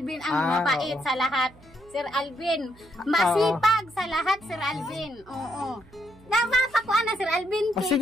ang mabait oo. sa lahat. Sir Alvin, masipag sa lahat, Sir Alvin. Oo. Napapakuan na, Sir Alvin. O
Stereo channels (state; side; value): noise; right; hum, 26 dB below the sound